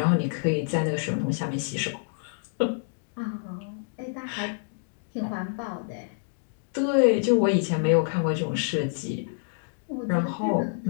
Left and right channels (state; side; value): silent; right; digital silence